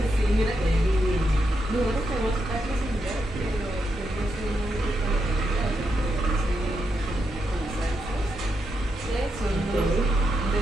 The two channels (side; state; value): both; normal; correlation 0.83